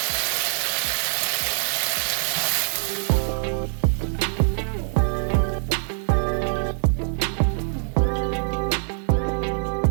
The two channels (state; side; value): silent; left; digital silence